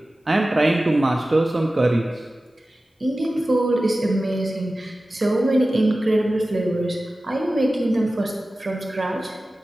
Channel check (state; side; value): normal; both; correlation 0.95